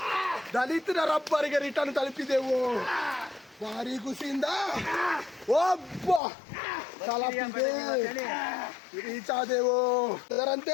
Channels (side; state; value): right; drops out; at 6.2 s